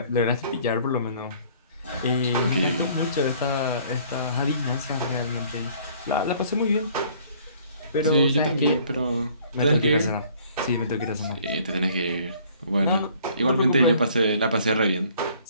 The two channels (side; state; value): both; inverted; correlation -0.57